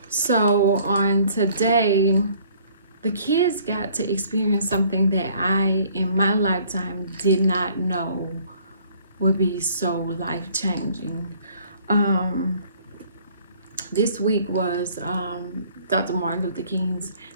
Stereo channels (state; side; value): inverted; both; correlation -0.58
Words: So on today, the kids got to experience something that I, in my lifetime, did not know would be so life-changing. Um, this week was Dr. Martin Luther King's